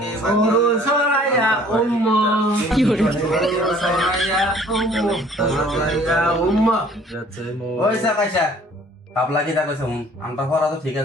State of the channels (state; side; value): normal; both; correlation 0.54